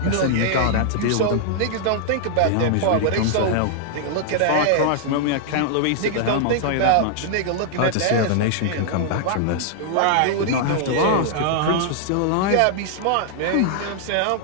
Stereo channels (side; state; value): both; different; correlation -0.01